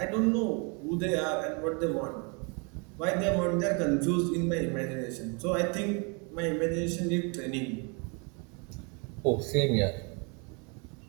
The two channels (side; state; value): left; quieter; 33.5 dB